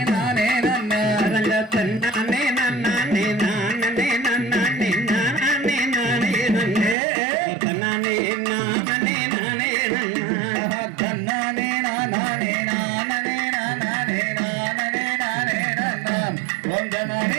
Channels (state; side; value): drops out; left; at 7.0 s